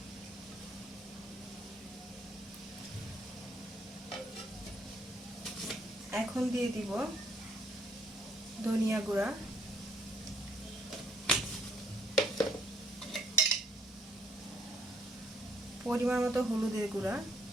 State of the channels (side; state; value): both; normal; correlation 0.68